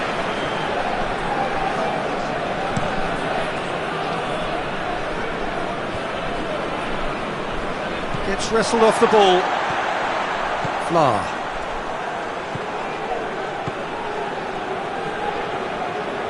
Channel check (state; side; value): identical; both; correlation 1.00